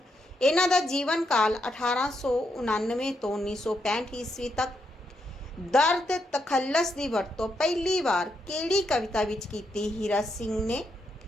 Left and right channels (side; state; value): both; normal; correlation 0.80